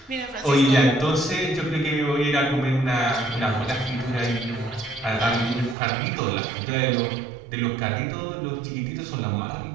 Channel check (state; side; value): drops out; left; at 5.8 s